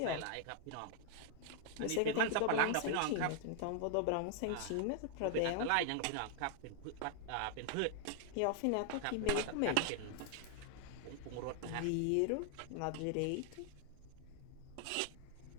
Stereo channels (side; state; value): both; different; correlation 0.00